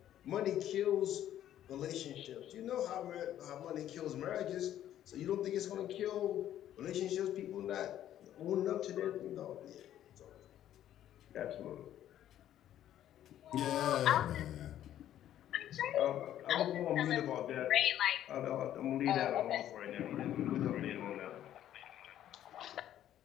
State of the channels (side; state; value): right; quieter; 11.7 dB